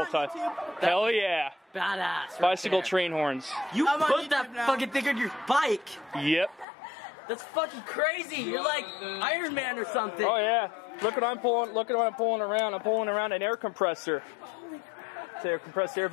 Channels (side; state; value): right; drops out; at 6.7 s